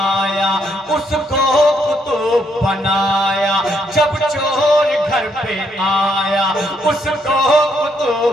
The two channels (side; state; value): both; normal; correlation 0.74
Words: اس کو قطب بنایا. جب چور گھر پہ آیا، اس کو قطب